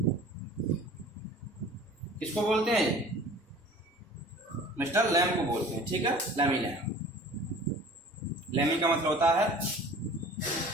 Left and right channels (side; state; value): both; normal; correlation 0.45